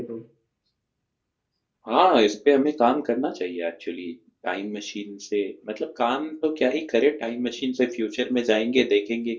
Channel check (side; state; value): both; identical; correlation 1.00